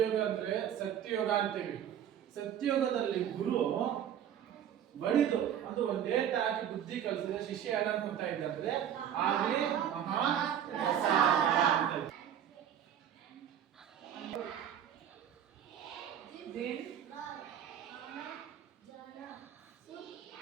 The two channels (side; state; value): left; quieter; 9.6 dB